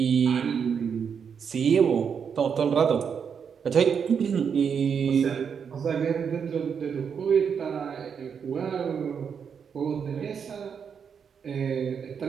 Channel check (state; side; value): quieter; left; 6.9 dB